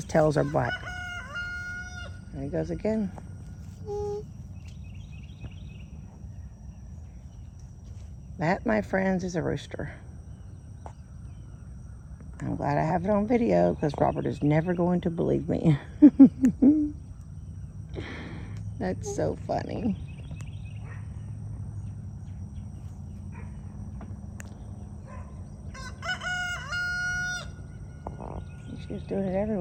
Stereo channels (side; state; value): both; identical; correlation 1.00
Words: tails are black. There he goes again. That, my friends, is a rooster. I'm glad I have it on video because Robert is never going to believe me. That's so funny. She's doing it